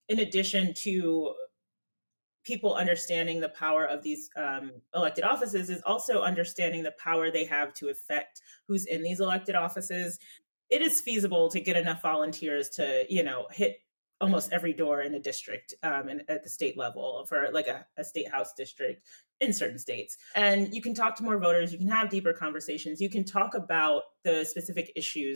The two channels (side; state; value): both; inverted; correlation -1.00